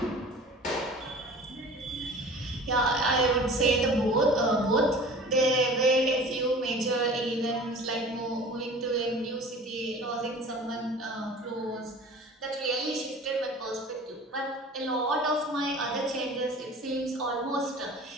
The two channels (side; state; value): both; normal; correlation 0.42